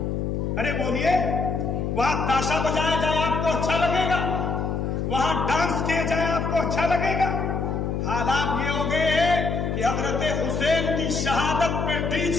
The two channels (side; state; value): left; noise; hum, 1 dB below the sound